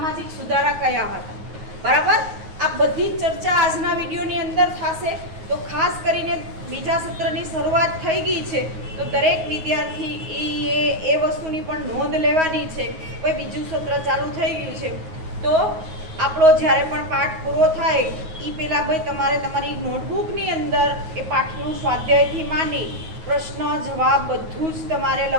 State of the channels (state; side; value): late; left; 9.4 ms